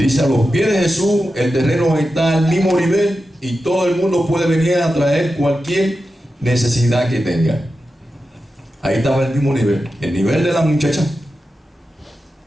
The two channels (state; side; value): normal; both; correlation 0.91